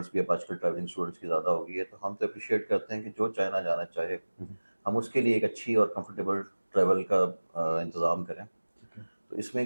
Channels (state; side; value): inverted; both; correlation -1.00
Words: भी अब आजकल ट्रैवलिंग स्टूडेंट्स की ज़्यादा हो गई है, तो हम तो अप्रिशिएट करते हैं कि जो चाइना जाना चाहे हम उसके लिए एक अच्छी और कंफर्टेबल ट्रैवल का इंतज़ाम करें। तो इसमें